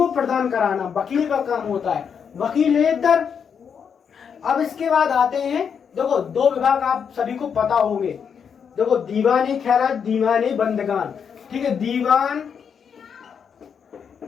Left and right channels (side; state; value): right; quieter; 7.0 dB